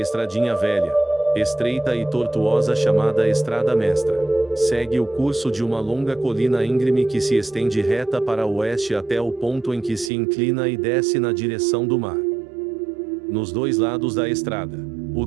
velha, estreita e tortuosa chamada Estrada Mestra, segue o curso de uma longa colina íngreme que se estende reta para o oeste até o ponto em que se inclina e desce na direção do mar. Nos dois lados da estrada, o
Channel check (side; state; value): left; drops out; at 10.1 s